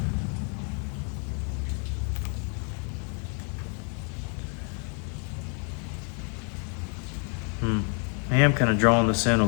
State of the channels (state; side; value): quieter; right; 39.6 dB